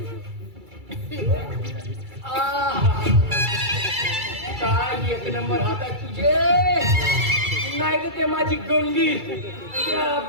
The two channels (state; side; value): late; left; 2.3 ms